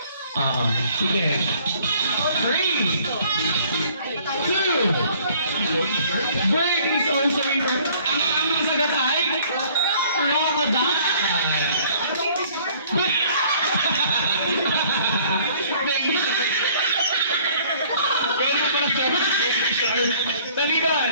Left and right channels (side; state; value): both; inverted; correlation -0.57